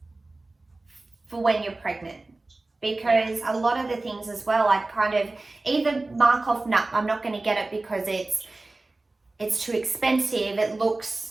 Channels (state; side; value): quieter; left; 3.1 dB